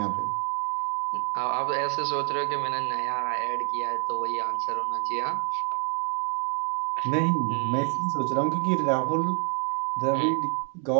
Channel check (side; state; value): left; quieter; 36.2 dB